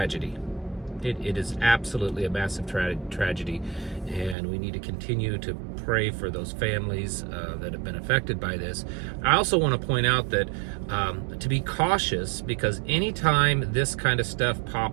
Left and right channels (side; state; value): left; drops out; at 4.4 s